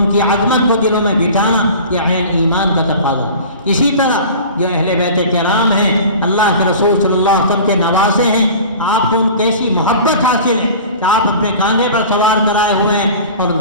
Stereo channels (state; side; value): inverted; both; correlation -0.40